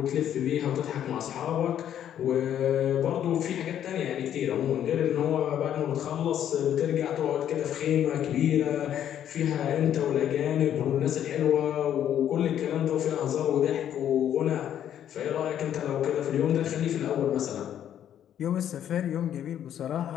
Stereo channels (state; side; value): quieter; right; 10.3 dB